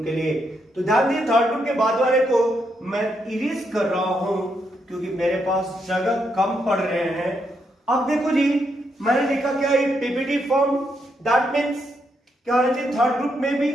के लिए। तो ध्यान दिए, थर्ड ग्रुप के बाद वाले को मैं इरेज कर रहा हूं क्योंकि मेरे पास जगह कम पड़ रहे हैं। अब देखो जी, मैंने लिखा क्या, ये पीपीटी फॉर्म, दैट मींस क्या होना चाहिए, थर्ड ग्रुप में भी।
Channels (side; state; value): both; normal; correlation 0.79